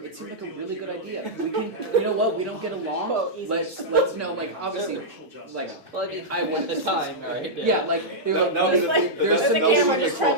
seemed like a really good idea. We can, you know what? We don't get along. Let's know like obviously like well, I mean, I went at the time, right? Yeah, like they're like there's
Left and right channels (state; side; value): normal; both; correlation -0.09